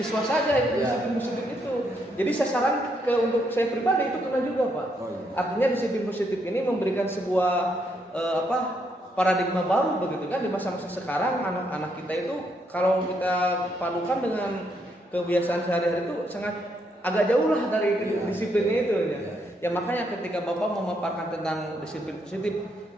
saja itu disiplin positif itu. Jadi sasaran untuk saya pribadi itu kena juga Pak. Artinya disiplin positif ini memberikan sebuah paradigma baru begitu kan di masa-masa sekarang. Anak-anak kita itu kalau kita padukan dengan kebiasaan sehari-hari itu sangat agak jauh lah dari disiplinnya itu ya. Ya makanya ketika Bapak memaparkan tentang disiplin positif,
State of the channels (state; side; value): normal; both; correlation 0.75